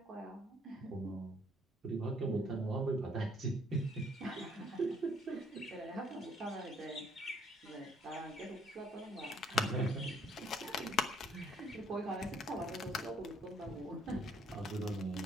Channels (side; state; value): both; normal; correlation 0.64